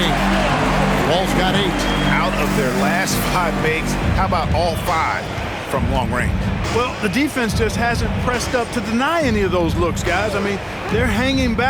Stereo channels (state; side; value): identical; both; correlation 1.00